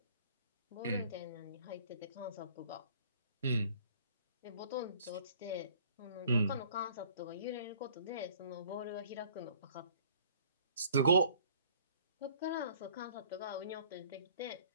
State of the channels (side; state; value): both; inverted; correlation -0.55